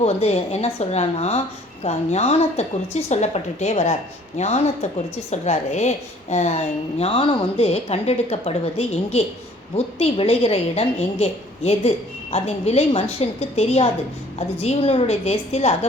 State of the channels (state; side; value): normal; both; correlation 0.56